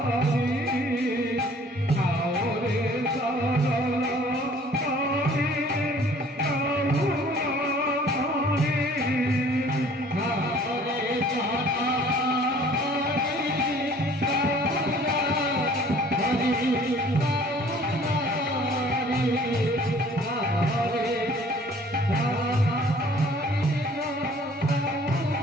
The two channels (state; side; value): normal; both; correlation 0.53